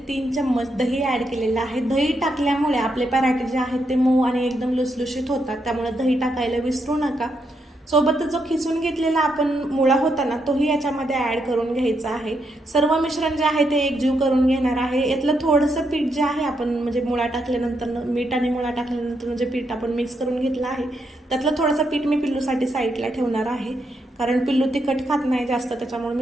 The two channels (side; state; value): both; normal; correlation 0.80